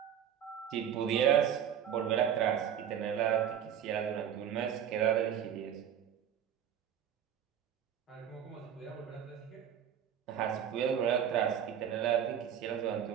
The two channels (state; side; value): quieter; left; 9.3 dB